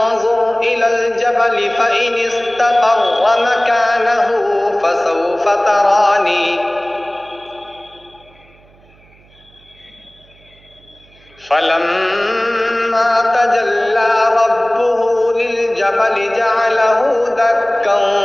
इलल जबल फ़इन इस्तक़र्र मकानहु फसौफ़ तरानी। फलम्मा तजल्ला रब्बुहु लिलजबल जअलहु दक्कन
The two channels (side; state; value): right; noise; hum, 29 dB below the sound